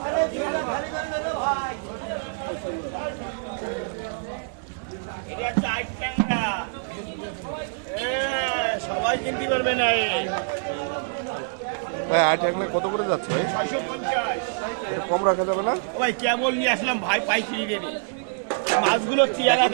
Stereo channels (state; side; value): silent; left; digital silence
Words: এটা চার ট্যাংরা, সবাই কিনতে পারবে না। ভাই 8 টাকা কত করে যাচ্ছে ভাই? 650। এটা কম রাখা যাবে না? ভাই কেবল নিয়ে আসলাম ভাই, পাইকারি রেটে। মাছগুলো চেহারা